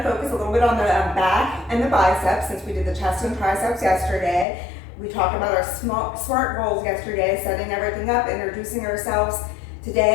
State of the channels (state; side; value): drops out; right; at 4.5 s